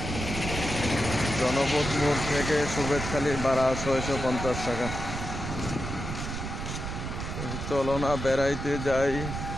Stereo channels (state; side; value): noise; right; rumble, 5 dB below the sound